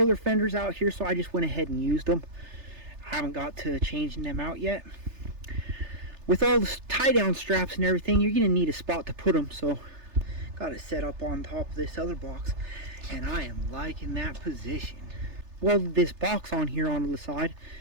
fenders out here, so I just went ahead and used them. I haven't got to changing them out yet. With all the tie down straps and everything, you're going to need a spot to put them, so got it set up on top of this other box, and I am liking that position. Welded this box on here onto the side.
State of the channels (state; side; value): late; left; 3.3 ms